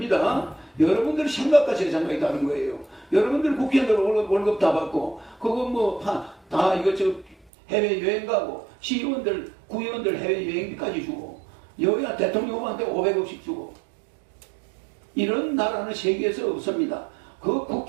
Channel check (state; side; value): drops out; left; at 7.5 s